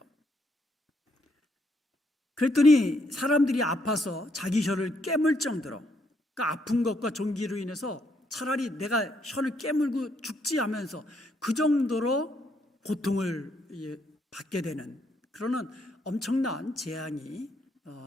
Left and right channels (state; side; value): normal; both; correlation 0.74